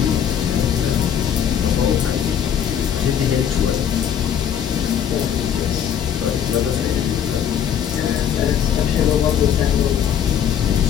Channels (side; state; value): right; quieter; 9.0 dB